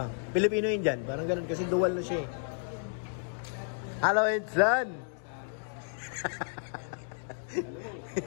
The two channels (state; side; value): silent; right; digital silence